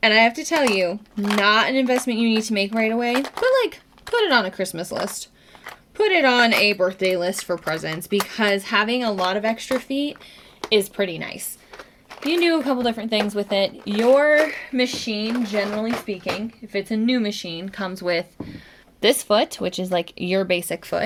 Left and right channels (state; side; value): identical; both; correlation 1.00